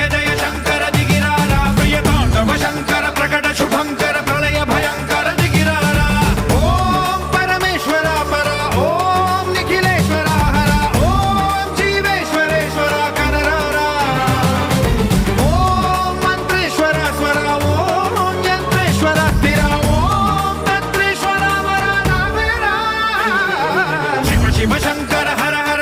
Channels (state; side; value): identical; both; correlation 1.00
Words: జయ శంకర దిగిరారా ప్రియ తాండవ శంకర ప్రకట శుభంకర ప్రళయ భయంకర దిగిరారా ఓం పరమేశ్వర పర ఓం నిఖిలేశ్వర హర ఓం జీవేశ్వరేశ్వర కనరారా ఓం మంత్రేశ్వర స్వర ఓం యంత్రేశ్వర స్థిర ఓం తంత్రేశ్వర వర నావేరా శివ శివ శంకర హర